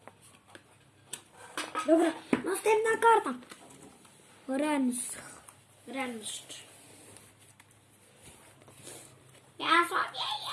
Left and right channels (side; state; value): both; identical; correlation 1.00